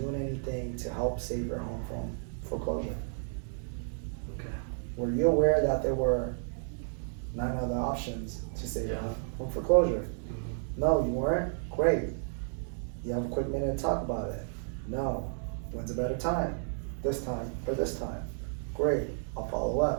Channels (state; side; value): silent; left; 56 dB below the other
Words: doing anything to help save your home from foreclosure? Okay. Were you aware that there were 9 other options to save your Yeah. home from foreclosure? Mm-hmm. No, you weren't? Great. You have a quick minute to talk about it? No. When's a better time? This time or this time? Great. I'll follow